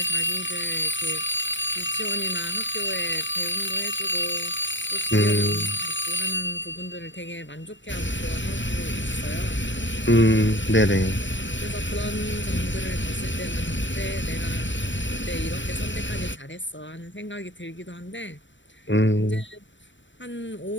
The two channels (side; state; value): right; late; 0.54 ms